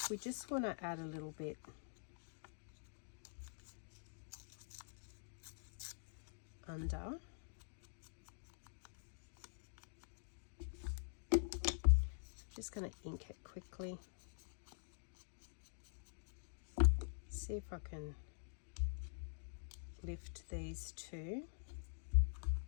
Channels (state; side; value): silent; right; digital silence